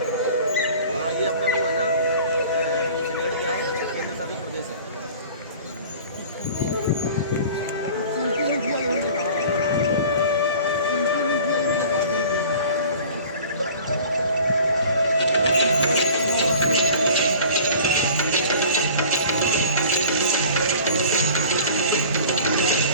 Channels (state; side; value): inverted; both; correlation -0.44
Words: हाँ ये अपना वो है ना, चंडीगढ़ क्या है, केंद्र शासित प्रदेश है।